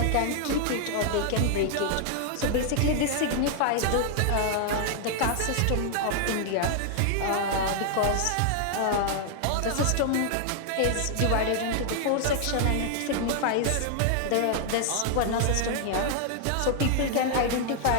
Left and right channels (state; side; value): different; both; correlation 0.00